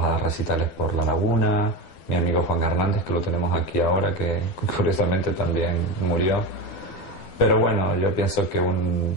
a dar recitales por La Laguna. Mi amigo Juan Hernández, que lo tenemos aquí ahora, que curiosamente también murió. Pero bueno, yo pienso que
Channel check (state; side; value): late; right; 12 ms